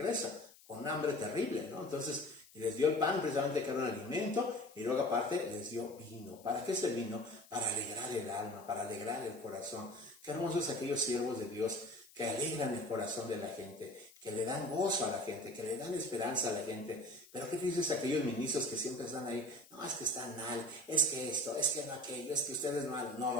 con un hambre terrible, ¿no? Entonces les dio el pan precisamente que era un alimento y luego aparte les dio vino. ¿Para qué es el vino? Para alegrar el alma, para alegrar el corazón. Qué hermosos aquellos siervos de Dios que alegran el corazón de la gente, que le dan gozo a la gente, que le dan esperanza a la gente. Pero ¿qué dices aquellos ministros que siempre están ahí? No, es que están mal, es que esto, es que no aquello, es que ustedes no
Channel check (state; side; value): noise; left; hiss, 23 dB below the sound